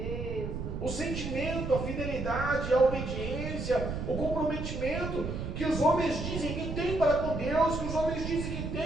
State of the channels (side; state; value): right; noise; rumble, 4 dB below the sound